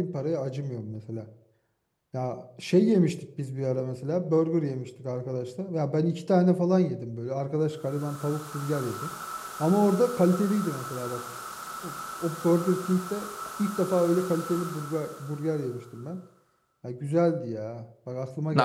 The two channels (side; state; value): both; identical; correlation 1.00